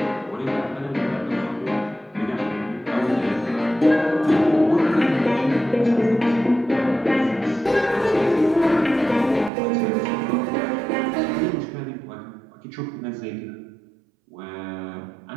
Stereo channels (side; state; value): left; drops out; at 9.5 s